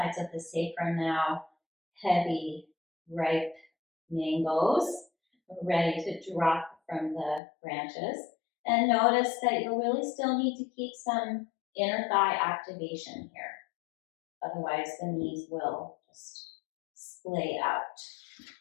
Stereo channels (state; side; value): drops out; right; at 7.4 s